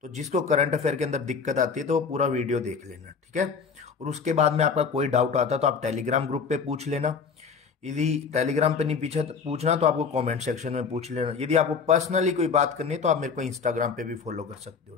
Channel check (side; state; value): right; quieter; 5.7 dB